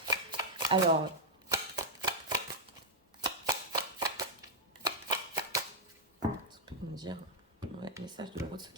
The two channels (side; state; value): both; normal; correlation -0.04